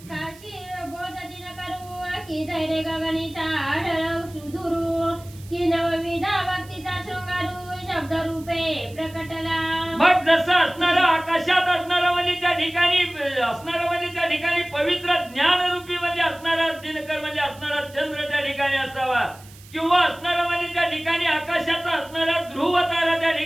काशी बोध दिन करू की धैर्य गगनीचा आढळ सुधुरू की नवविधा भक्तीचा शृंगारू शब्द रूपे प्रकटला. मग जसं असणारा आकाशात असणारा म्हणजे त्या ठिकाणी असणारा म्हणजे त्या ठिकाणी पवित्र ज्ञान रूपी म्हणजे असणारा दिनकर म्हणजे असणारा चंद्र त्या ठिकाणी असावा किंवा असणारा म्हणजे त्या ठिकाणी आकाशाचा असणारा ध्रुव तारा त्या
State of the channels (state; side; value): noise; right; hiss, 22 dB below the sound